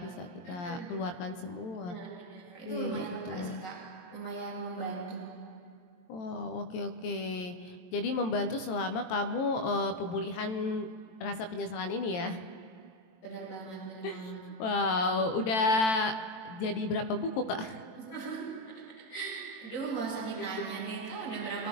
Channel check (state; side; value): late; right; 23 ms